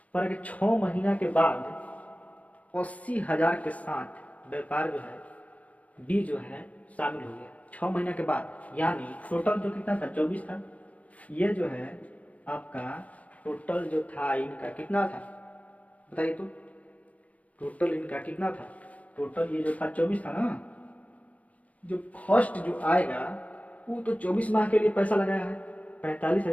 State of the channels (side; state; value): right; late; 0.068 ms